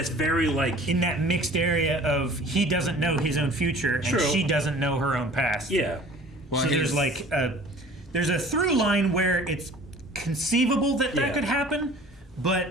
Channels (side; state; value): both; normal; correlation 0.47